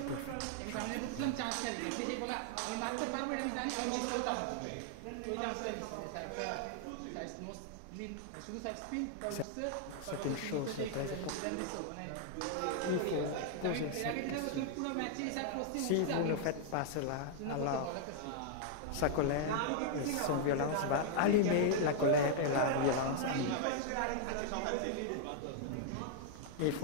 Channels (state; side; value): different; both; correlation 0.00